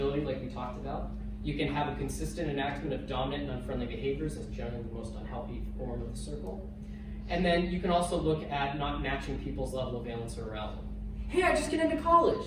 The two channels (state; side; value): identical; both; correlation 1.00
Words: like we talked about. You can have a consistent enactment of dominant and unfriendly behaviors as generally the most unhealthy form of the circle. And then you can also look at not matching people's level of valence or arousal. Hey, I just get into